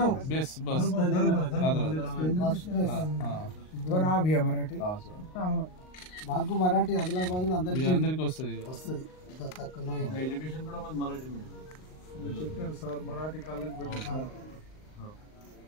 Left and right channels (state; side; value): late; right; 38 ms